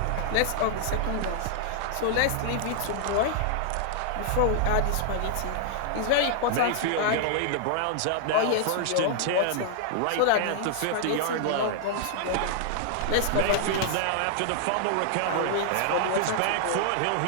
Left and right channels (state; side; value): different; both; correlation -0.01